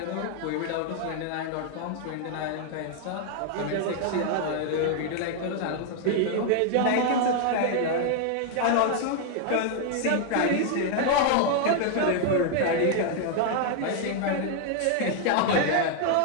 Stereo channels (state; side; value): different; both; correlation 0.00